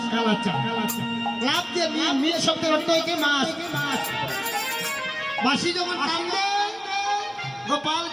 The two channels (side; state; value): both; identical; correlation 1.00